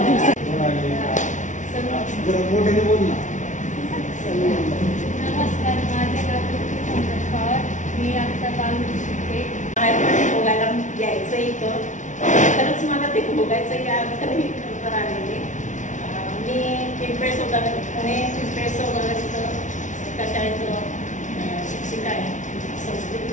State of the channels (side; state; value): right; late; 0.36 ms